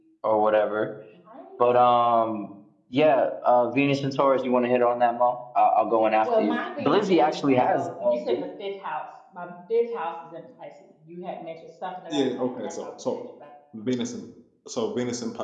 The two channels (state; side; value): identical; both; correlation 1.00